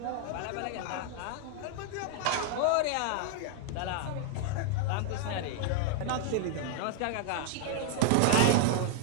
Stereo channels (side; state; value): both; different; correlation 0.00